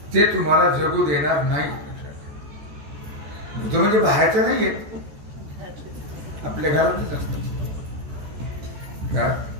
ते तुम्हाला जगू देणार नाही. भूत म्हणजे बाहेरचं नाही येत आपल्या घरातच असतं.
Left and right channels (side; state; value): left; late; 14 ms